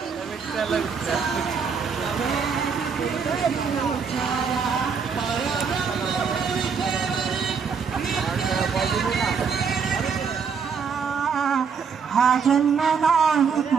हा जन्म नाही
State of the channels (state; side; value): quieter; left; 6.1 dB